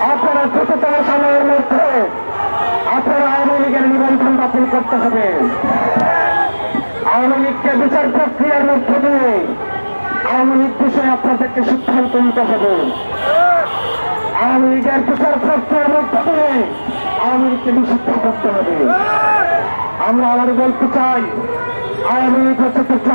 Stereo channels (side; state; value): both; inverted; correlation -1.00